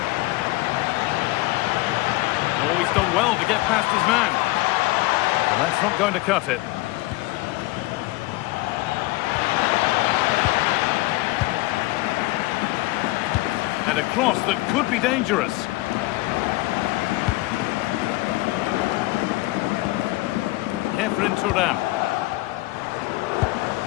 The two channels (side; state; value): right; quieter; 20.4 dB